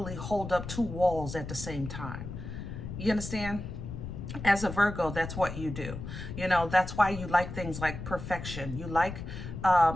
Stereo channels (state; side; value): noise; left; rumble, 8 dB below the sound